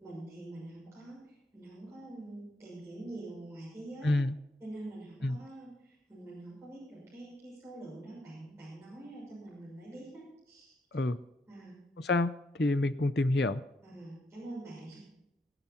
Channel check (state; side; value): normal; both; correlation 0.76